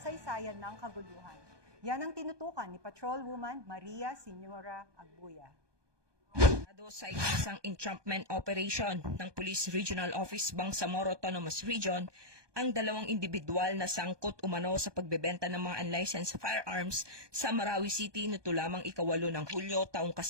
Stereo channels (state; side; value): late; left; 1.2 ms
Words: ng kaguluhan. Yan ang tinutukan ni Patrolwoman Maria Señora Agbuya. Sa ikinasang entrapment operation ng Police Regional Office Bangsamoro Autonomous Region, ang dalawang individual na sangkot umano sa pagbebenta ng mga unlicensed firearms sa Marawi City nito lamang 8 ng Hulyo taong